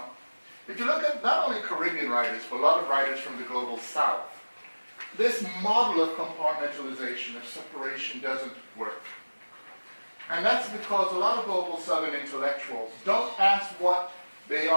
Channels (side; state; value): both; inverted; correlation -1.00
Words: If you look at not only Caribbean writers, but a lot of writers from the global south, this model of compartmentalization, of separation, doesn't work. And that's because a lot of global southern intellectuals don't ask what they